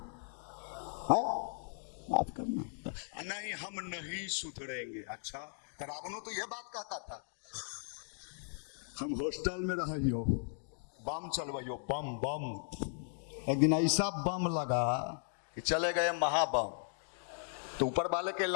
माफ करना, नहीं हम नहीं सुधरेंगे। अच्छा, तो रावणों तो यह बात कहता था, हम हॉस्टल में रहियो, बम चलवाइयो, बम बम। एक दिन ऐसा बम लगा कि चले गए महाबम। तो ऊपर वाले के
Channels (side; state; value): right; silent; digital silence